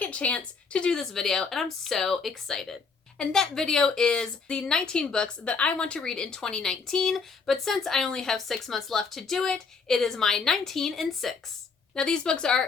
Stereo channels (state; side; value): quieter; right; 4.9 dB